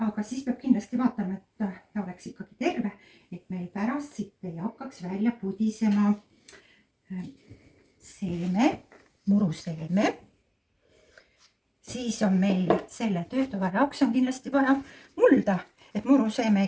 aga siis peab kindlasti vaatama, et ta oleks ikkagi terve, et meil pärast siit ei hakkaks välja pudisema seeme, muruseeme. Siis on meil selle töötoa jaoks on kindlasti vaja mulda, et muruseeme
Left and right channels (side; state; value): both; identical; correlation 1.00